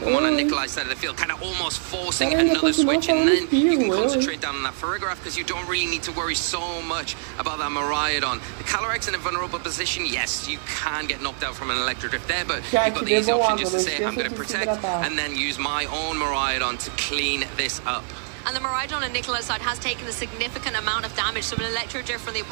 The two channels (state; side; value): silent; left; digital silence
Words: on Nikolai's side of the field, kind of almost forcing another switch, and then you can concentrate down on that Farigiraf because you don't really need to worry so much about that Miraidon. The Calyrex in a vulnerable position, yes, you can get knocked out from an Electro Drift there, but you've got the easy option just to say, I'm going to protect, and then use my own Miraidon to clean this up. And the Miraidon on Nikolai's side has taken a significant amount of damage, so an Electro Drift from the